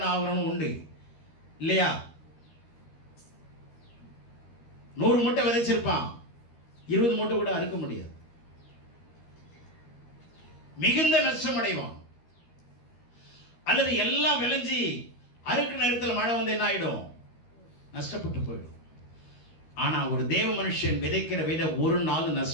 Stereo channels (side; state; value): right; late; 13 ms